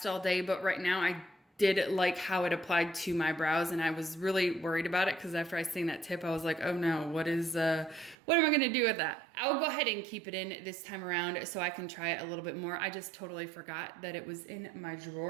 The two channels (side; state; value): left; drops out; at 8.2 s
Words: all day, but right now I did like how it applied to my brows, and I was really worried about it because after I seen that tip, I was like, oh no, what am I gonna do with that? I will go ahead and keep it in this time around so I can try it a little bit more. I just totally forgot that it was in my